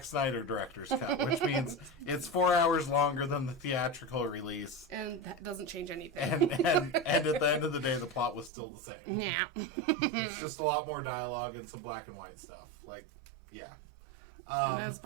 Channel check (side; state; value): left; drops out; at 8.5 s